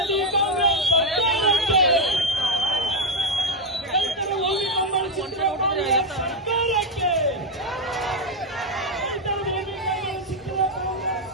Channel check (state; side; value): normal; both; correlation 0.03